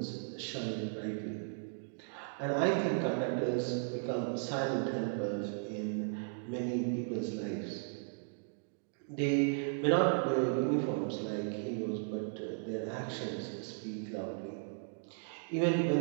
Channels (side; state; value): left; silent; digital silence